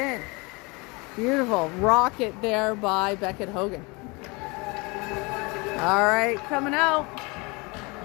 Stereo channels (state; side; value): quieter; right; 27.4 dB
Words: Beautiful. Rocket there by Beckett Hogan. All right, coming out.